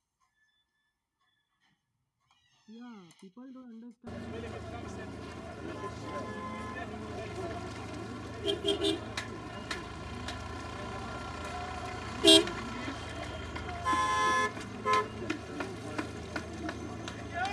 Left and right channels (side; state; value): both; identical; correlation 1.00